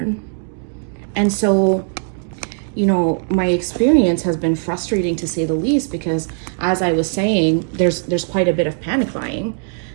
And so, you know, my experience has been frustrating to say the least, because as I was saying, there's quite a bit of panic buying,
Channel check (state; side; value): silent; left; 57 dB below the other